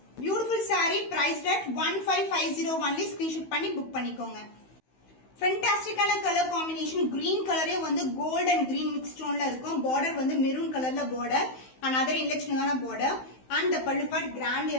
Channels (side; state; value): right; late; 16 ms